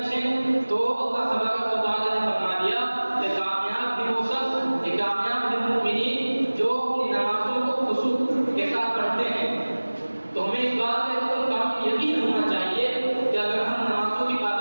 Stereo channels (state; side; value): inverted; both; correlation -1.00